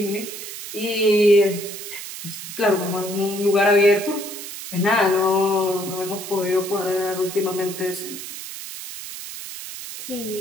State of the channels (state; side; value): noise; right; hiss, 10 dB below the sound